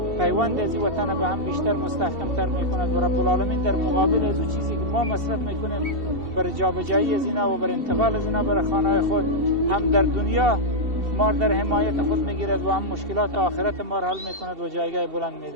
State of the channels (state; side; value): late; left; 2.7 ms